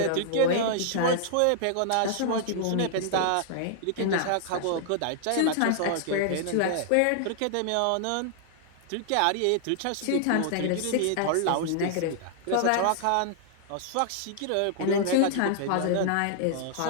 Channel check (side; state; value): both; different; correlation -0.01